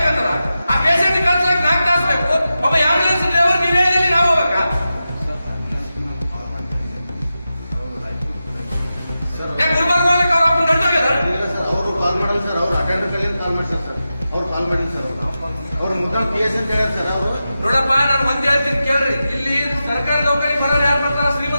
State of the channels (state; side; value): inverted; both; correlation -0.91